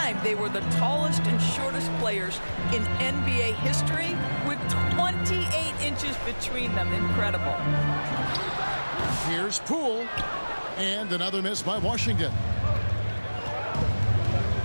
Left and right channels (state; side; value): inverted; both; correlation -1.00